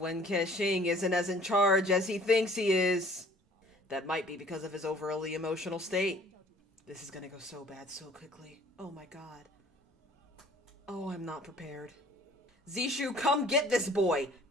Kexing isn't as in charge as he thinks he is. That might be because of his overly emotional state. This is gonna go so bad so quickly. Oh my god. Oh, I'm not prepared. Zishu, come get this boy.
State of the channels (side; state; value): both; normal; correlation 0.53